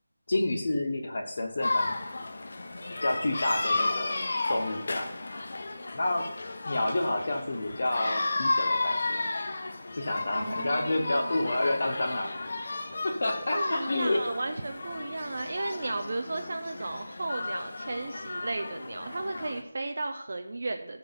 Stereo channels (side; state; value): both; inverted; correlation -0.95